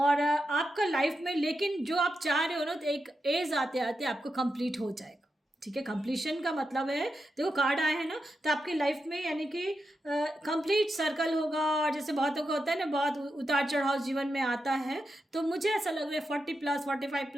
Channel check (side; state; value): both; normal; correlation 0.87